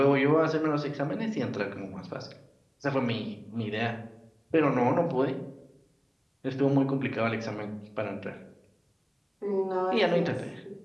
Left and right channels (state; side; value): identical; both; correlation 1.00